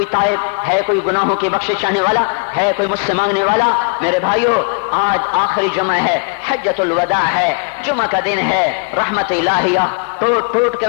تائب، ہے کوئی گناہوں کی بخشش چاہنے والا، ہے کوئی مجھ سے مانگنے والا۔ میرے بھائیو، آج آخری جمعہ ہے، حجۃ الوداع ہے، جمعہ کا دن ہے، رحمت الہیہ ٹوٹ ٹوٹ کے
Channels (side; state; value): right; quieter; 35.1 dB